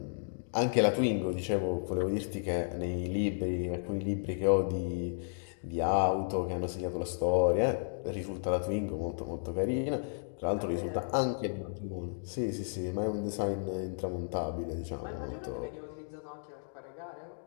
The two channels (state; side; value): silent; right; digital silence